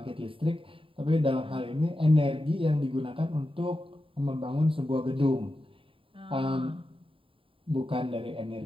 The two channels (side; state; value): left; late; 0.26 ms